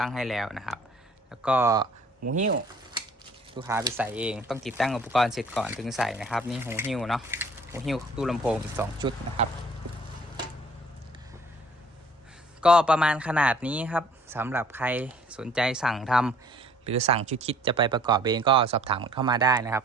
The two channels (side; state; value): both; normal; correlation 0.55